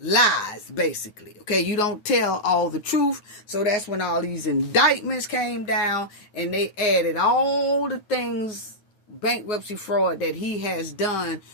basically. Okay, you don't tell all the truth. So that's when all these indictments came down and they added all the things, bankruptcy fraud that he has done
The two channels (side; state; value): right; late; 9.2 ms